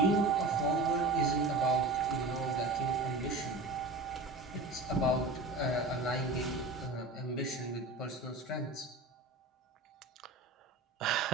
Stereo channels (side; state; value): left; quieter; 3.0 dB